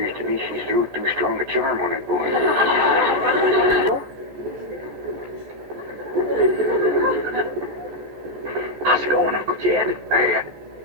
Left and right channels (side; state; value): left; late; 14 ms